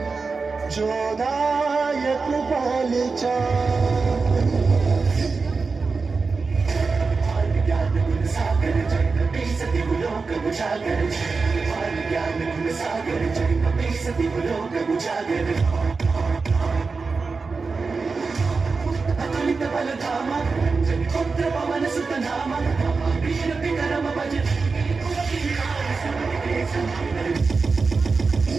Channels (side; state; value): left; quieter; 4.4 dB